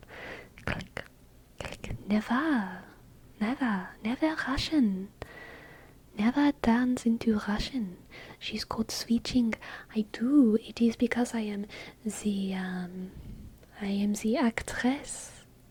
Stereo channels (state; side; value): identical; both; correlation 1.00